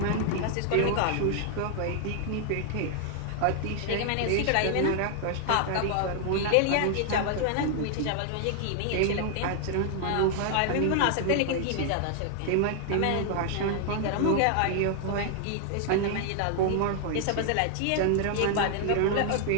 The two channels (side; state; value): both; different; correlation 0.00